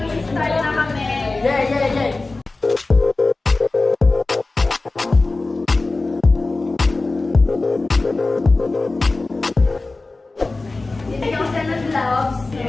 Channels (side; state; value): right; quieter; 3.3 dB